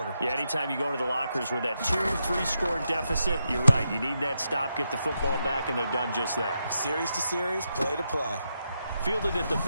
Yeah, anytime you go to the lockers with that 2-3 score deficit, you're right. You need that stop, get the football back, and they've done just that. Series to series, play to play. Fielded at the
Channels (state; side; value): inverted; both; correlation -0.84